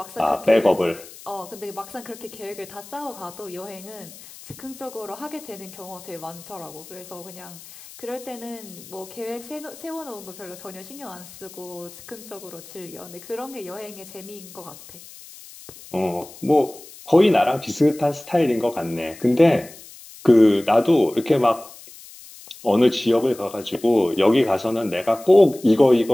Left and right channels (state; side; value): noise; left; hiss, 18 dB below the sound